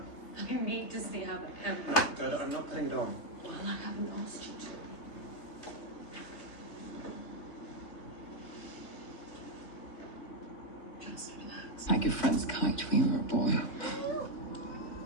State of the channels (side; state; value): right; late; 3.5 ms